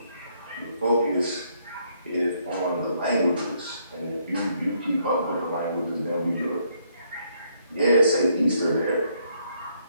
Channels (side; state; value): both; inverted; correlation -0.71